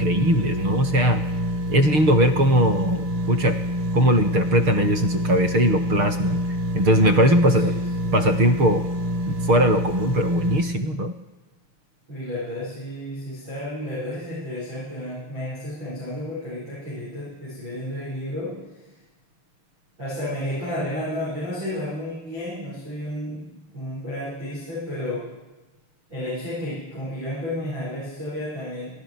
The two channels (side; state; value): left; late; 6.6 ms